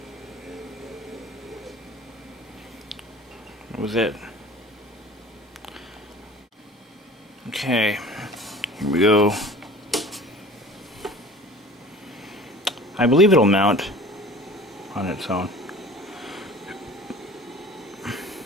That was it. Okay, here we go. I believe it'll mount on its own.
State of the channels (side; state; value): both; normal; correlation 0.44